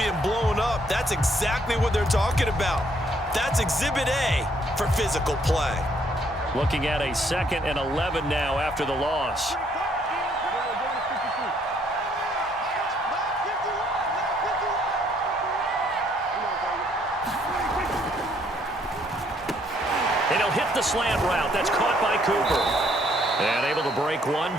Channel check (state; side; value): normal; both; correlation 0.67